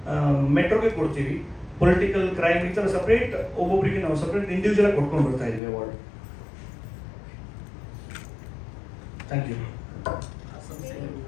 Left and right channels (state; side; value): drops out; right; at 5.6 s